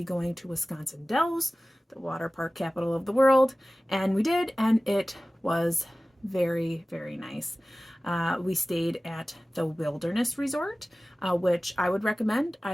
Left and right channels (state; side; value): normal; both; correlation 0.97